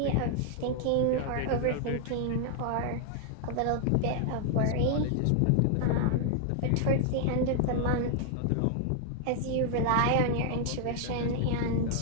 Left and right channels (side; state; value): both; different; correlation 0.00